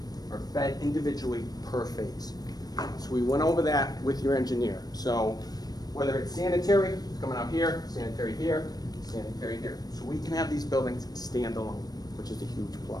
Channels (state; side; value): late; right; 0.19 ms